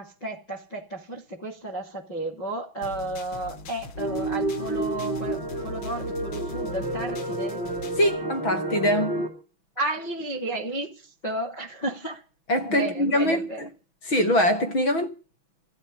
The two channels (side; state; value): right; late; 6.1 ms